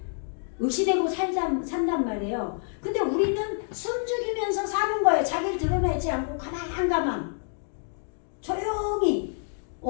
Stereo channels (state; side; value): silent; right; digital silence